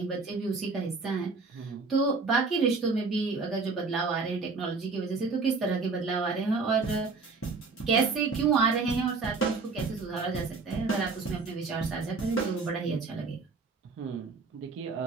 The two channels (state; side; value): quieter; left; 4.3 dB